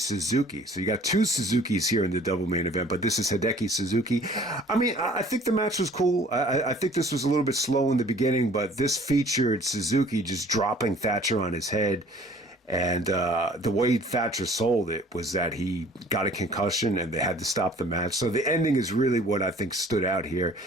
So you got two Suzukis here in the double main event, but this is Hideki Suzuki. I mean, I think the match was cool. I think this was a little bit slow in the beginning, but this featured Suzuki just dropping Thatcher on his head And the way Thatcher sold it was that he got a concussion and they had to stop the match. So the ending is really what I think stood out here.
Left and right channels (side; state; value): both; normal; correlation 0.52